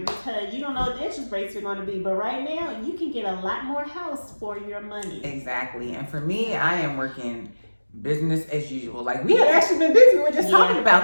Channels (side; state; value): both; inverted; correlation -1.00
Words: you don't know what the interest rates are going to be. But right now, you can get a lot more house for your money. Exactly. And for me, I am working business as usual. Like, we had actually been busy. We were just talking